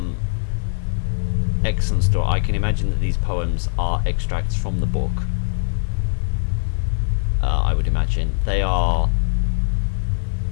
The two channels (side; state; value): right; silent; digital silence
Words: excellent story. I can imagine that these poems are extracts from the book. I would imagine they are.